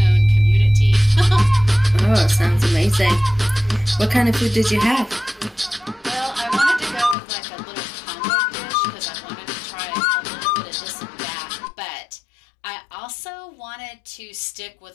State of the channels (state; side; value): drops out; right; at 7.2 s